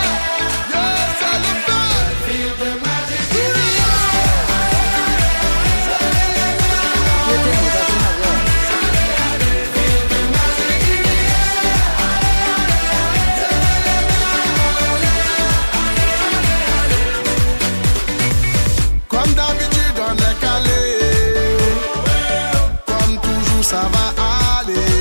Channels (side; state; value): both; inverted; correlation -1.00